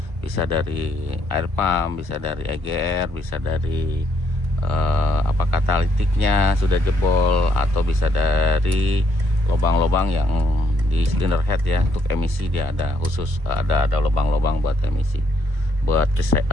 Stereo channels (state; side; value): late; left; 1.2 ms